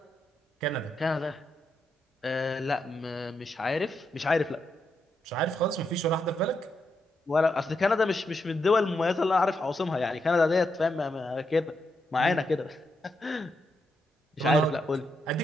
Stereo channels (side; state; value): both; normal; correlation 0.82